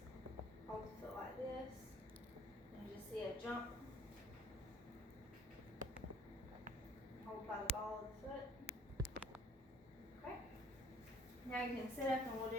hold the foot like this, and you just see a jump, hold by the ball of the foot. Okay, now you can sit up and we'll do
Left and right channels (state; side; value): normal; both; correlation 0.56